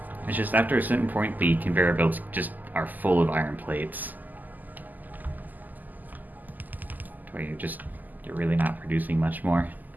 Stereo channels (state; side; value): late; left; 0.084 ms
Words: It's just after a certain point, the conveyor belts just are full of iron plates. Where you're really not producing much more.